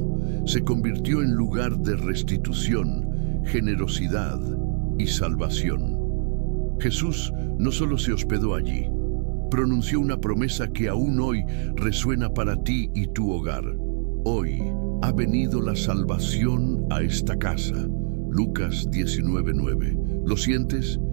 se convirtió en lugar de restitución, generosidad y salvación. Jesús no solo se hospedó allí, pronunció una promesa que aún hoy resuena para ti y tu hogar. Hoy ha venido la salvación a esta casa. Lucas 19:9. ¿Lo sientes?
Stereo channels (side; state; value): left; silent; digital silence